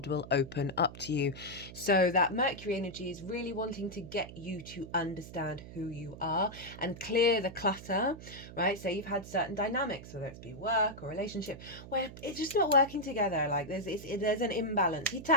will open up to you. So that Mercury energy is really wanting to get you to understand who you are and clear the clutter, right? So you've had certain dynamics, whether it's be work or relationship, where it's just not working together. Like there's an imbalance.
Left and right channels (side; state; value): right; noise; hum, 14 dB below the sound